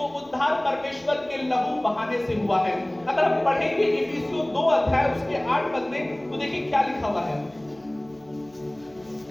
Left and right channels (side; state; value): left; noise; hum, 29 dB below the sound